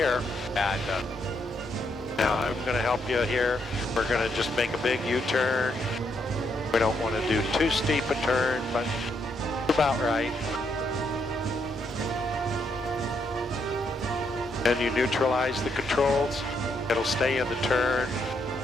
Yeah, it does. Now I'm going to help you here. We're going to just make a big U-turn. We don't want to do too steep a turn, but about right. Then you neutralize the controls. It'll stay in the turn.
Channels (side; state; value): both; normal; correlation 0.76